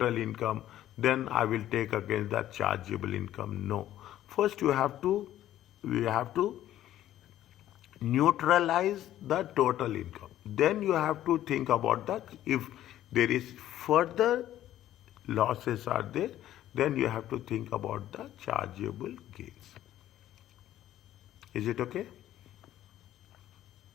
income, then I will take against the chargeable income. No. First we have to neutralize the total income. Then you have to think about that if there is further losses are there, then you have to think about the chargeable gains. Is it okay?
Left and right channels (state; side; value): quieter; right; 12.8 dB